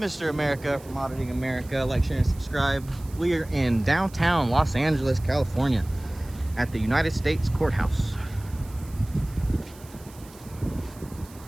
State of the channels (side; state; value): right; noise; hiss, 22 dB below the sound